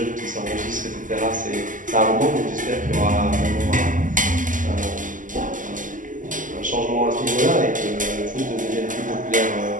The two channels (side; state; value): left; late; 0.38 ms